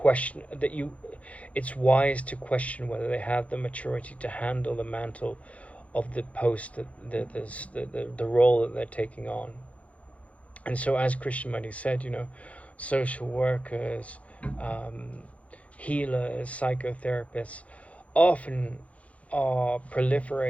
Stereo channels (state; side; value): late; right; 0.065 ms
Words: that it's wise to question whether they have the maturity to handle the mantle of the post, the role that they're taking on. And so, as Krishnamurti said, social workers, healers, psychotherapists often are